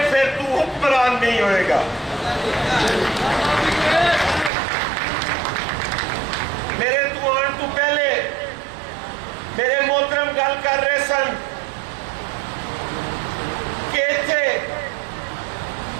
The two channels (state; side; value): drops out; left; at 4.5 s